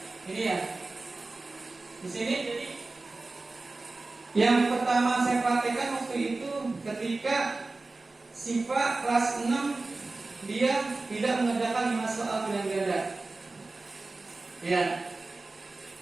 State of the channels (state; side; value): quieter; left; 3.4 dB